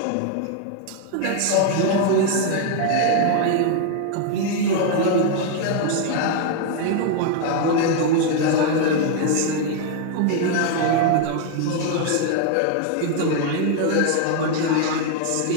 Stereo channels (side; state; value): both; different; correlation 0.00